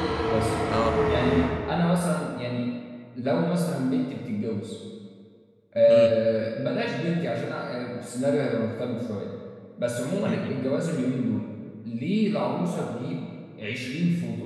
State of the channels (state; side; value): identical; both; correlation 1.00